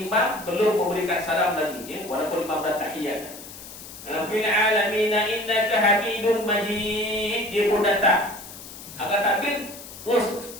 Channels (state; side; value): noise; left; hiss, 15 dB below the sound